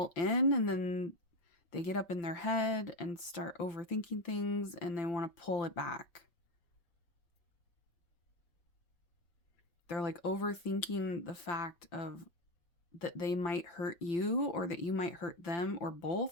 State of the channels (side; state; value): right; late; 5.9 ms